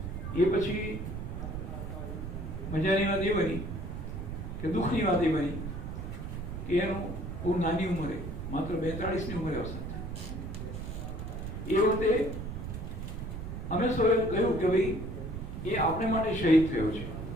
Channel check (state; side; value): noise; right; rumble, 6 dB below the sound